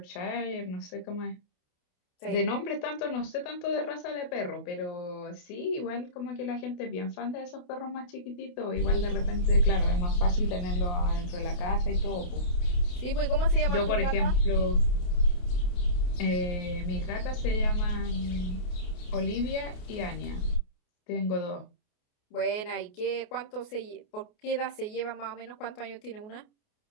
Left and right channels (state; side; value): late; right; 28 ms